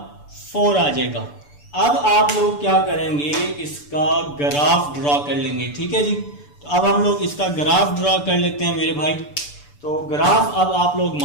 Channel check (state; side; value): late; right; 6.9 ms